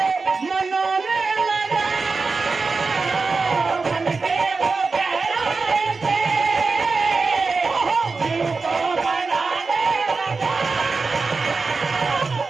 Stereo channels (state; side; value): quieter; left; 4.3 dB